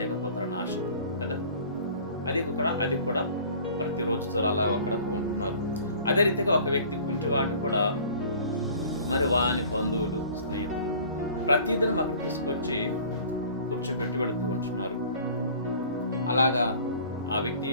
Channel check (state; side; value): inverted; both; correlation -0.48